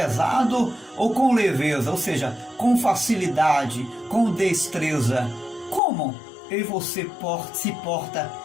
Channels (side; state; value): right; drops out; at 5.8 s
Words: ou com leveza, ou seja, com facilidade, com destreza? Como eu e você se porta